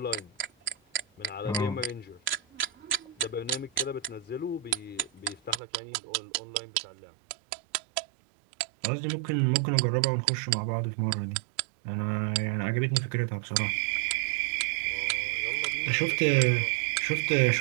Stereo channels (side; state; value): left; drops out; at 5.6 s